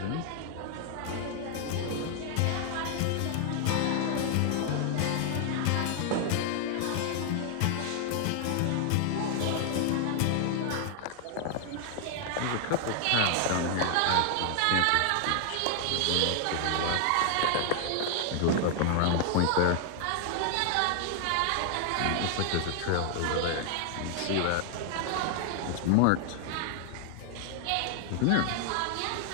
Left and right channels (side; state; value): both; different; correlation 0.00